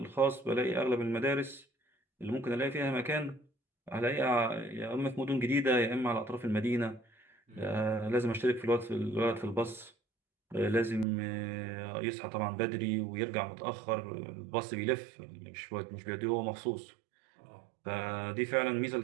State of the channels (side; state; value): left; drops out; at 11.1 s